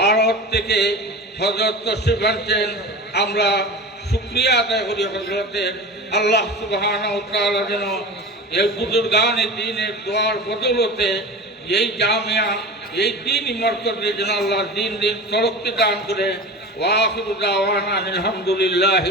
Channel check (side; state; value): both; normal; correlation 0.31